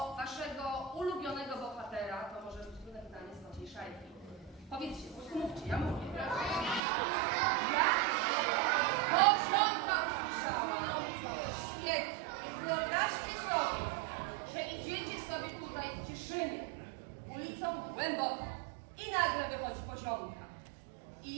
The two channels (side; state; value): left; drops out; at 6.8 s